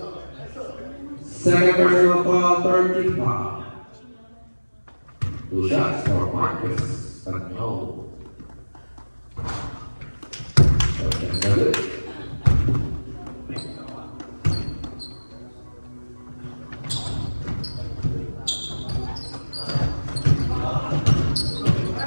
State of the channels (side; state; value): both; inverted; correlation -1.00